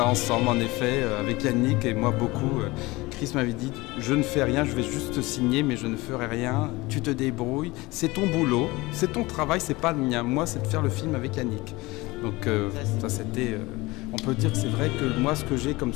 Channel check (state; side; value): quieter; right; 21.7 dB